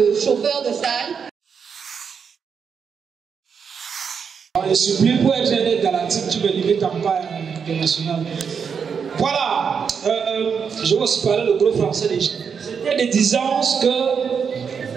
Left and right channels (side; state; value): left; quieter; 6.5 dB